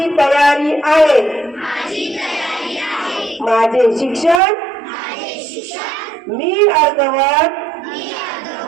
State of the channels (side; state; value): left; drops out; at 4.4 s